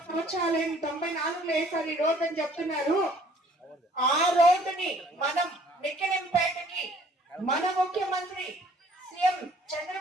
సంవత్సరాలైంది, 94లో వేసారు ఈ రోడ్డు అని చెప్తున్నారు. ఆ రోడ్డుని మనం మిక్కిలింపేటకి మన ముఖ్యమంత్రి సీఎం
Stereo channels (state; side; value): normal; both; correlation 0.57